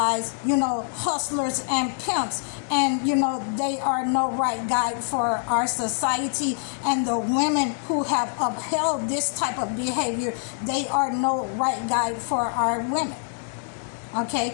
hustlers and pimps. And, they are no right guide for our society. And the women who have upheld this type of behavior, they are no right guide for our women.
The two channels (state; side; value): silent; right; 62 dB below the other